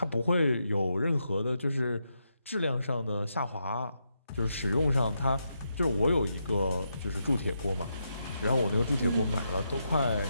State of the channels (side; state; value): both; inverted; correlation -0.83